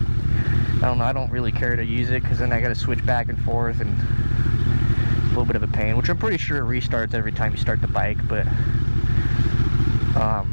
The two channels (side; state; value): both; inverted; correlation -1.00